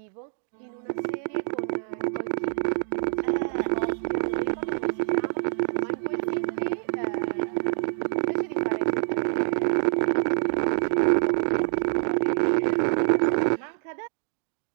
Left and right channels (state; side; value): silent; left; digital silence